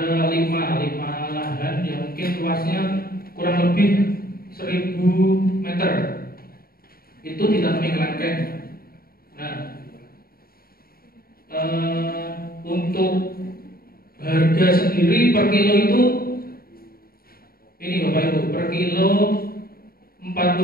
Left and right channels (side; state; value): right; late; 0.43 ms